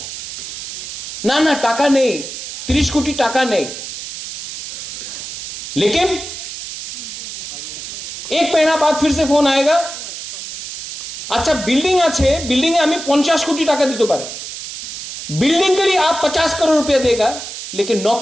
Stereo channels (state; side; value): noise; right; hiss, 8 dB below the sound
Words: ना टाका नहीं, 30 कोटी टाका नहीं। लेकिन एक महीना बाद फिर से फोन आएगा, अच्छा बिल्डिंग आछे, बिल्डिंग हमें 50 कोटी टाका दीते पारे, बिल्डिंग के लिए आप 50 करोड़ रुपया देगा, लेकिन